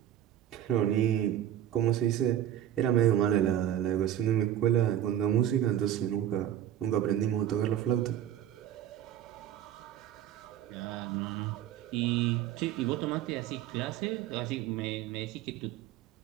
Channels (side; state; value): left; quieter; 11.1 dB